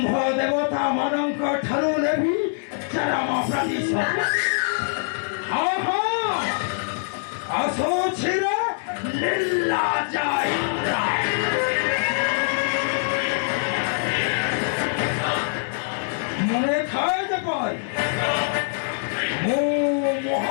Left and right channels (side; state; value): right; silent; 60 dB below the other